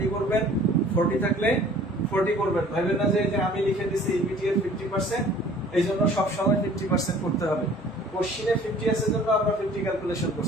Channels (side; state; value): both; normal; correlation 0.51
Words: করবেন, 40 থাকলে 40 করবেন। ভাবেন না যে আমি লিখে দিছি ইবিটি এর 50%, এই জন্য সবসময় 50% করতে হবে। কোশ্চিনে 50 আছে জন্য আমরা 50 ক্যালকুলেশন